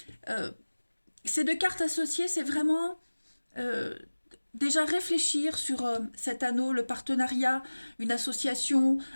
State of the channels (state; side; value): inverted; both; correlation -1.00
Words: ces deux cartes associées, c'est vraiment euh, déjà réfléchir sur cet anneau, le partenariat, une association,